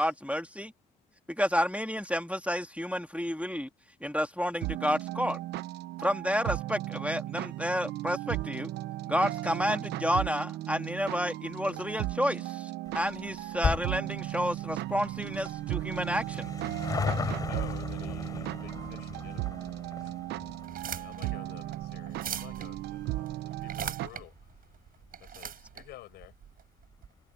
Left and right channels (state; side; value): normal; both; correlation 0.72